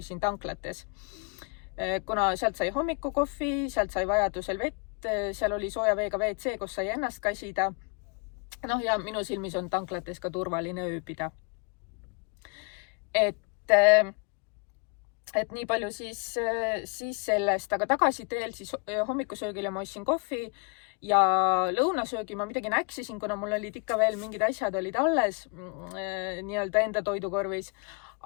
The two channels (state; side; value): quieter; right; 35.4 dB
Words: tanklates. Kuna sealt sai hommikukohvi, sealt sai vajadusel vett, seal oli sooja veega WC, kus sai ennast kasida. Ja minu silmis on tanklates ka turvaline ööbida. Et nii palju siis sellest, aga tagasiteel siis hommikusöögile ma ostsin kohvi ja lõunasöögi ma midagi näksisin, kuna mul olid ikka veel mingid asjad olid alles nii-öelda enda toidukorvis.